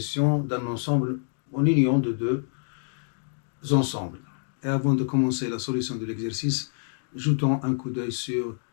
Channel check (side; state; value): right; silent; 60 dB below the other